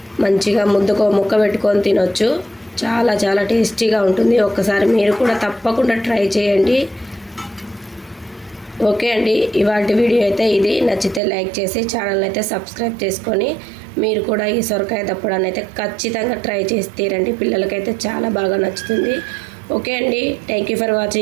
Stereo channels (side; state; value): left; drops out; at 11.2 s